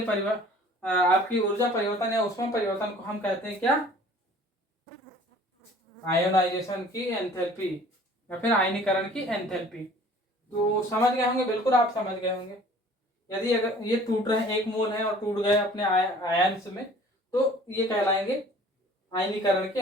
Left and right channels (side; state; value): both; normal; correlation 0.50